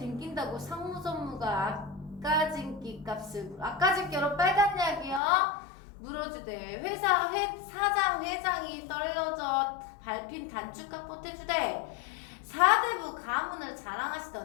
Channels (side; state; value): right; drops out; at 5.2 s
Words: 상무전무가 아까진기 값을 아까진께로 빨간 약이요? 물어주대. 사장 회장이 떨어져 밟힌 단축값 보태주대. 사대부 가문을